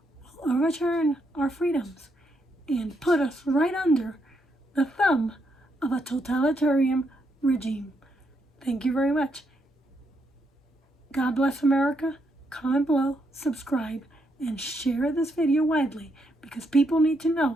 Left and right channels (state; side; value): normal; both; correlation 0.78